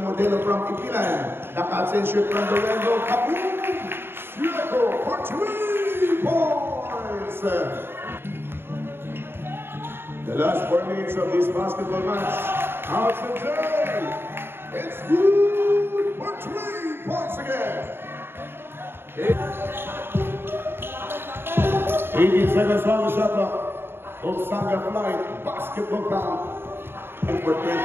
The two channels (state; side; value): late; left; 0.11 ms